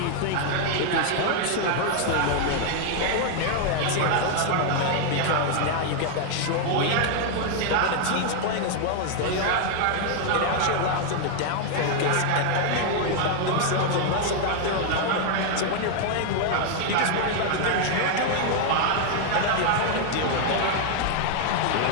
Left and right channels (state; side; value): different; both; correlation 0.00